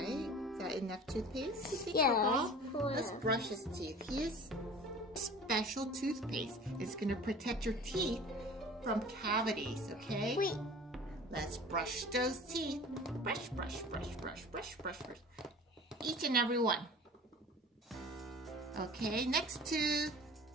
Is that enough toothpaste, you think, Yeah. for Bob? Let's brush his teeth. Here's special toothpaste. It's going to protect your teeth from cavities, okay? Wait. Let's brush those teeth. Brush, brush, brush, brush, brush, brush, brush. Each and every one. Okay, next tooth.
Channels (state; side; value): normal; both; correlation 0.42